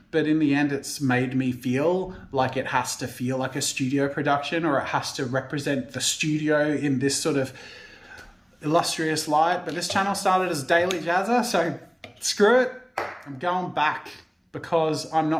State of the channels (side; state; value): both; identical; correlation 1.00